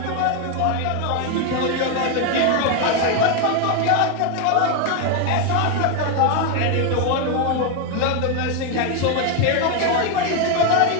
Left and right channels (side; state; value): both; different; correlation 0.01